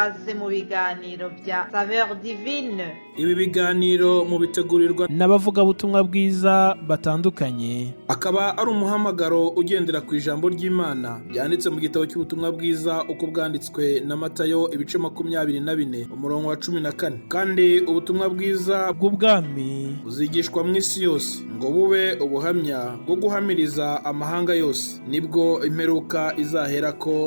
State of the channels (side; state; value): both; inverted; correlation -1.00